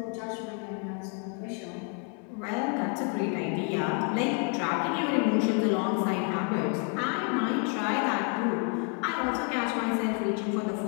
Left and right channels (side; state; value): right; quieter; 39.0 dB